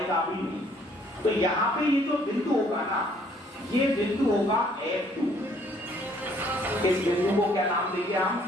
भी नहीं। तो यहाँ पे ये जो बिंदु होगा ना, ये बिंदु होगा F2। इस बिंदु को क्या नाम देंगे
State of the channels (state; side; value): normal; both; correlation 0.62